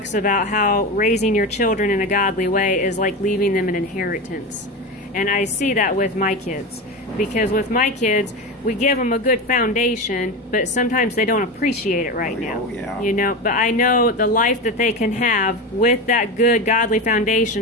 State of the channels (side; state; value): both; normal; correlation 0.22